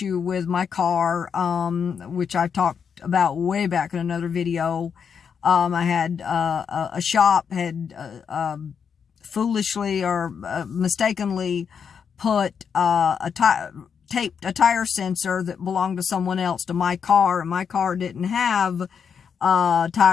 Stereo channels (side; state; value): right; quieter; 6.9 dB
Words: with my car, which I talked about way back in another video. I had a shop had foolishly or mistakenly put taped a tire sensor that belonged to someone else to my car, and my car didn't have a